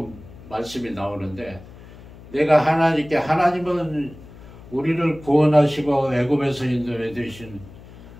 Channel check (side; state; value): left; noise; hum, 19 dB below the sound